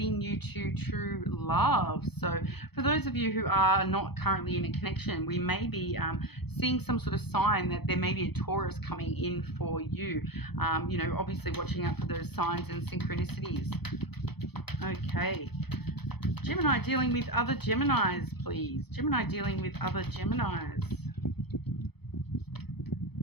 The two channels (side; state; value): right; late; 0.98 ms